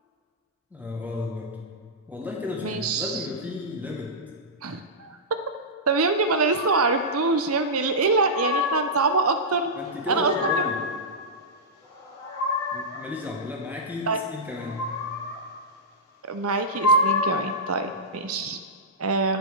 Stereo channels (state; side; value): normal; both; correlation -0.12